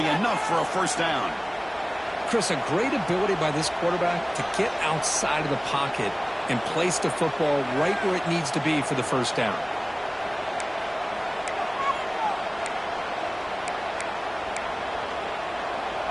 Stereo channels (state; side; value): identical; both; correlation 1.00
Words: enough for a first down. Chris, a great ability by this quarterback to get outside of the pocket and place the football right where it needs to be for the first down.